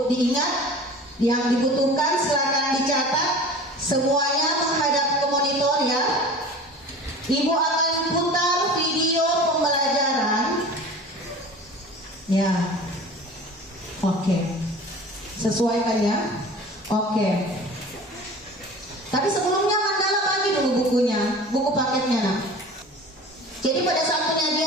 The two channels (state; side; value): normal; both; correlation 0.40